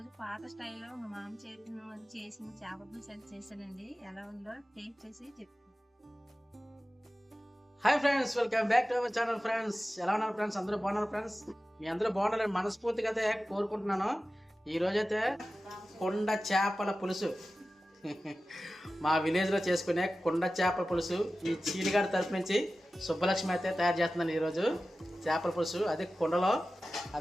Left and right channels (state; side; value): normal; both; correlation 0.95